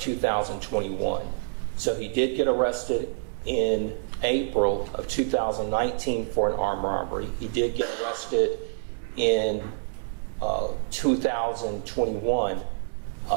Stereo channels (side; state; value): left; silent; digital silence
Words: So he did get arrested in April of 2019 for an armed robbery. He did get arrested in 2021